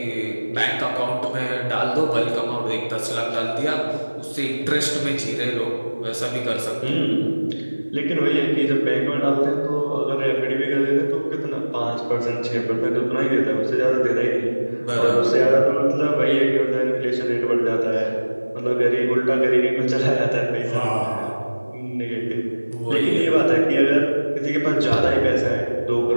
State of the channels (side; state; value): both; inverted; correlation -1.00